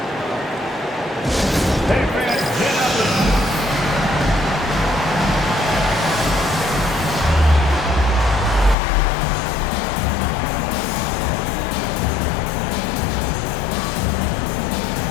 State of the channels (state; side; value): drops out; right; at 8.8 s